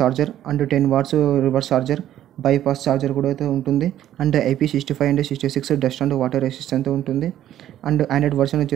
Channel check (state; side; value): quieter; left; 12.0 dB